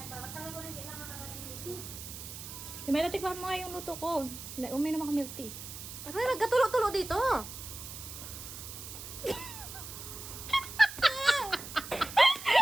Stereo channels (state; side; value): noise; right; hiss, 10 dB below the sound